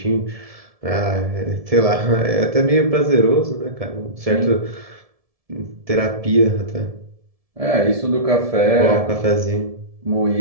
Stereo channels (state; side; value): late; left; 1.7 ms